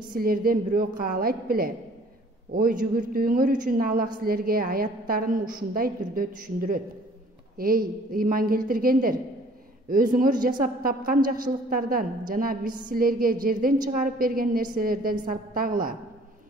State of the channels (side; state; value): both; normal; correlation 0.55